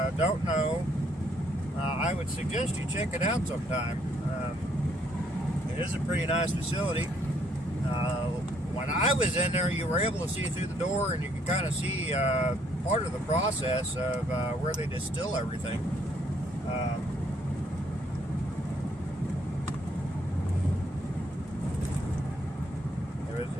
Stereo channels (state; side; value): normal; both; correlation 0.68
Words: don't know, I would suggest you check it out sometime. It is a pretty nice facility. When I was in there, you were able to see through the door, and you could kind of see part of the process of where they distill everything.